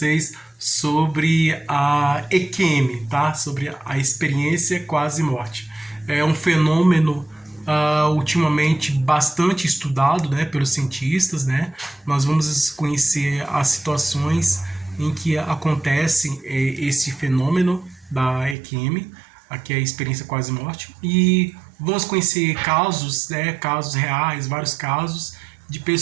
sobre a EQM, tá? Sobre a experiência quase morte. É um fenômeno ultimamente bastante estudado, né, pelos cientistas, né? Nós vamos conhecer as situações em que acontece esse fenômeno da EQM, aqui é a experiência quase morte, e vamos conhecer casos, né, casos reais, vários casos de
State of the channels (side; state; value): left; drops out; at 18.6 s